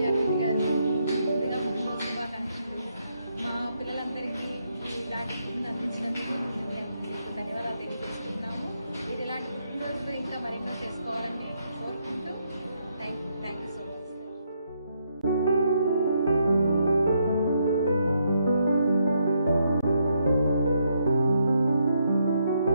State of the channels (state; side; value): inverted; both; correlation -0.77